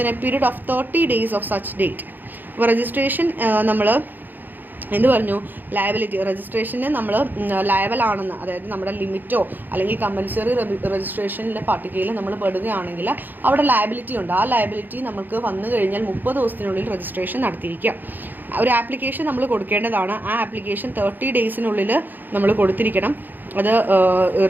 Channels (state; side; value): late; left; 0.088 ms